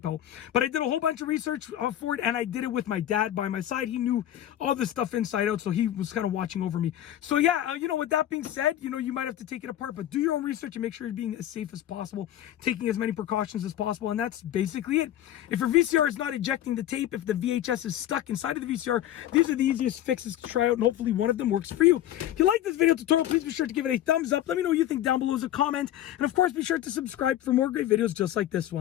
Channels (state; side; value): quieter; right; 12.3 dB